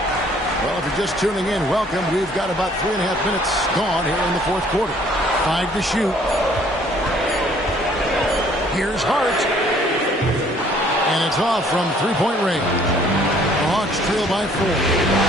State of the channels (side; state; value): both; normal; correlation 0.59